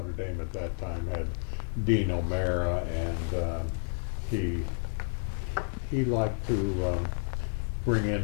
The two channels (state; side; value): silent; right; 57 dB below the other